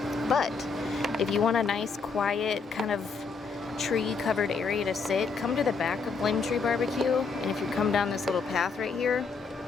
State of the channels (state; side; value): quieter; right; 4.9 dB